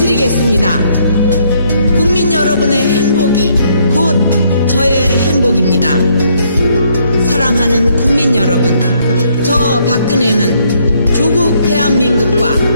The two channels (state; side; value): inverted; both; correlation -0.70